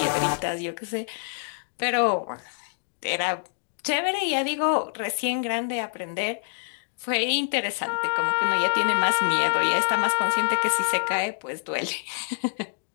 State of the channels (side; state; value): right; silent; digital silence